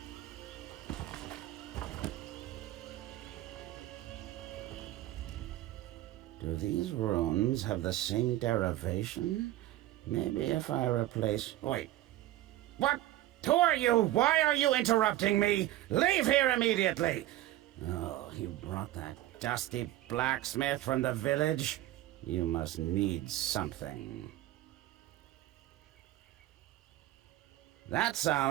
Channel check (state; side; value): quieter; left; 14.8 dB